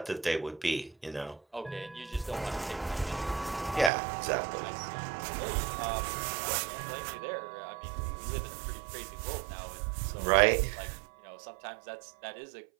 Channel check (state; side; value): drops out; left; at 3.9 s